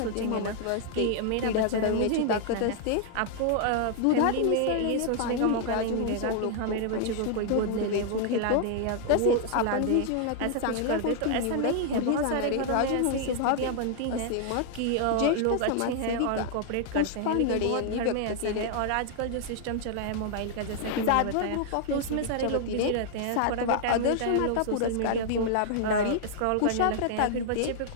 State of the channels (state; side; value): different; both; correlation 0.00